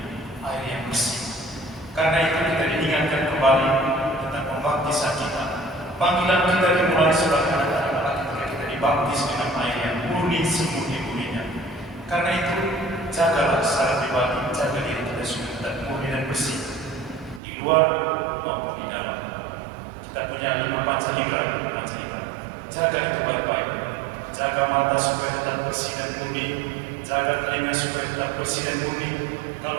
air yang bersih. Karena itu kita diingatkan kembali tentang pembaptisan kita. Panggilan kita dimulai sebagai anak-anak Allah ketika kita dibaptis dengan air yang murni, semurni-murninya. Karena itu jagalah secara pribadi, jaga diri kita supaya tetap murni dan bersih di luar maupun di dalam. Kita punya 5 panca indera. Jaga itu baik-baik. Jaga mata supaya tetap bersih dan murni. Jaga telinga supaya tetap bersih dan murni.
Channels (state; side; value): drops out; left; at 17.4 s